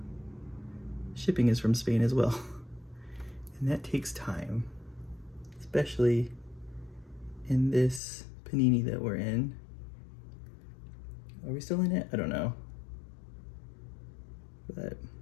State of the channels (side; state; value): right; drops out; at 8.0 s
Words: shipping is from Spain as well. And that takes time, especially in this panini that we're in. Are we still in it? I don't know.